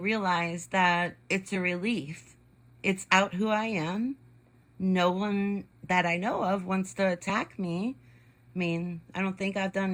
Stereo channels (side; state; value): both; identical; correlation 1.00